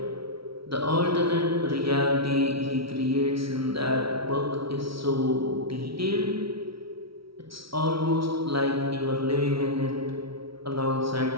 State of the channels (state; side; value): late; left; 0.75 ms